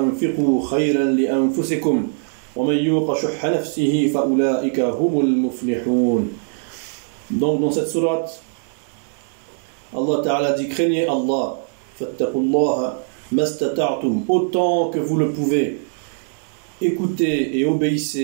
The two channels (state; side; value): silent; left; 65 dB below the other